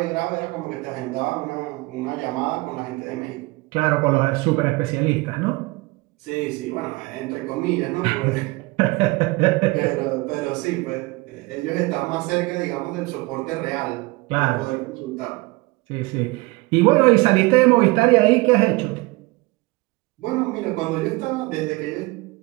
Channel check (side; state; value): left; quieter; 23.8 dB